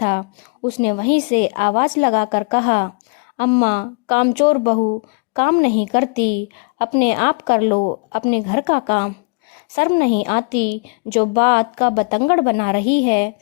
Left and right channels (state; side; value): quieter; right; 33.9 dB